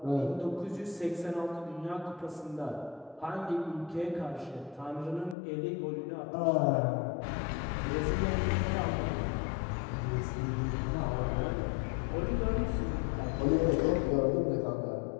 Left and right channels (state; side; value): drops out; right; at 5.4 s